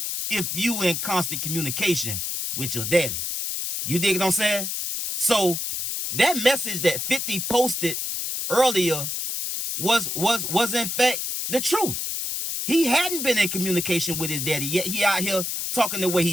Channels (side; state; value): left; noise; hiss, 3 dB below the sound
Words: if you in constant communication with your daddy. You dig what I'm saying? So that message that 50 posted earlier was in fact the truth. He hadn't been in communication with his daddy, yet he out here talking the way